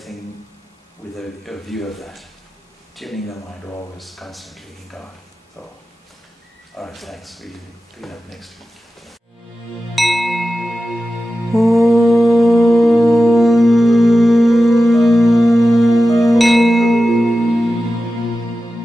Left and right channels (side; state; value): both; normal; correlation 0.93